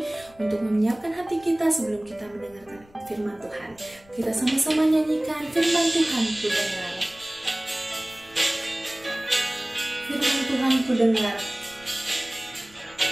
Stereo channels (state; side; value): noise; left; rumble, 26 dB below the sound